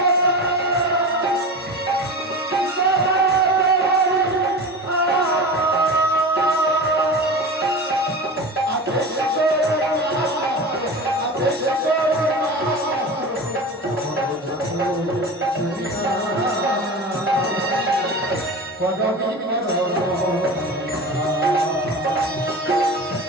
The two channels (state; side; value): normal; both; correlation 0.30